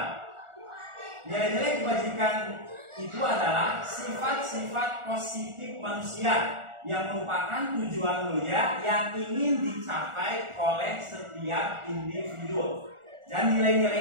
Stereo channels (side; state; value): left; late; 1.4 ms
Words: Nilai-nilai kebajikan itu adalah sifat-sifat positif manusia yang merupakan tujuan mulia yang ingin dicapai oleh setiap individu. Dan